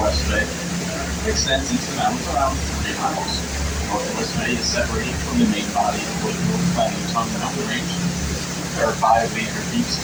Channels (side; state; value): both; identical; correlation 1.00